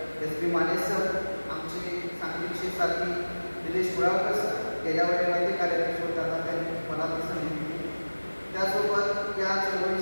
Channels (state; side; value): inverted; both; correlation -1.00